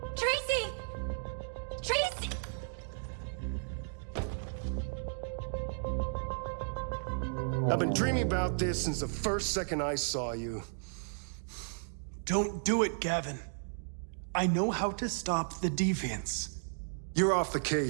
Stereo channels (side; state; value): left; silent; digital silence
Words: Tracy! Tracy! I've been dreaming about this since the first second I saw you. Don't do it, Gavin. I know how to stop the deviants. You're off the